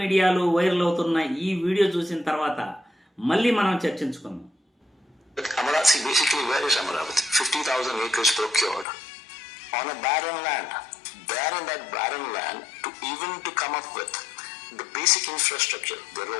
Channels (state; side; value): drops out; right; at 8.8 s